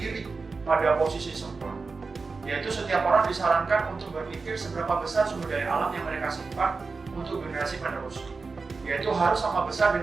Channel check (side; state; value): left; quieter; 4.3 dB